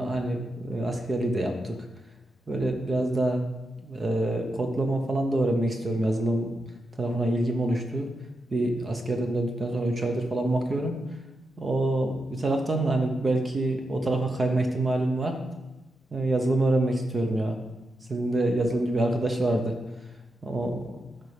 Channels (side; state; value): both; normal; correlation 0.87